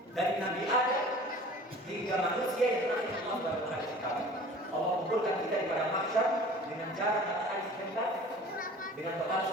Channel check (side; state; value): both; normal; correlation 0.44